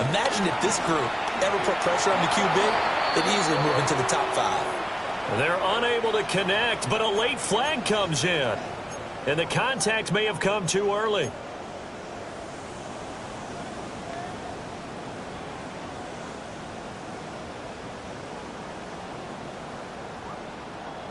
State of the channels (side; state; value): both; identical; correlation 1.00